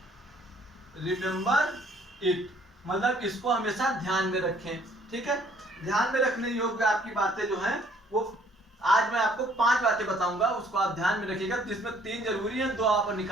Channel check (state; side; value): normal; both; correlation 0.61